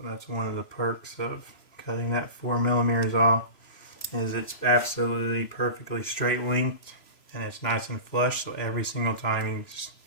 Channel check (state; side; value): late; right; 3.0 ms